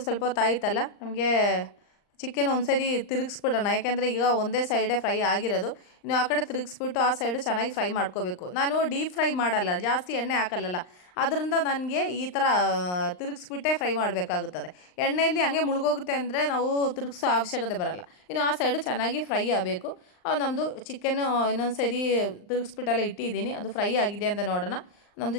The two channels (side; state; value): right; late; 39 ms